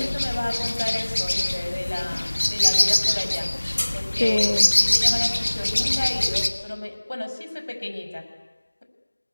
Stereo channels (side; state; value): both; inverted; correlation -1.00